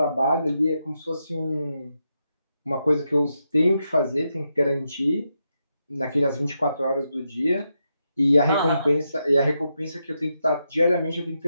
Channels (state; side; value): inverted; both; correlation -0.84